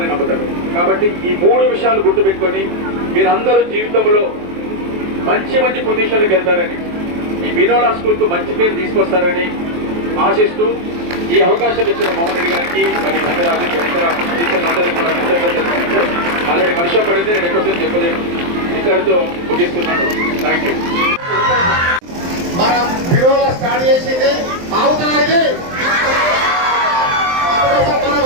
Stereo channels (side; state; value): left; late; 23 ms